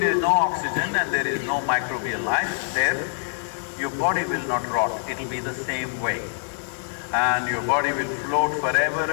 is no oxygen and there is no microbial life there, your body will not rot, it'll be the same way. And your body will float forever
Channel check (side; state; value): right; silent; digital silence